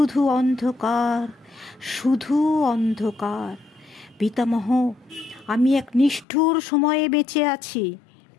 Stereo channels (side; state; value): right; drops out; at 6.2 s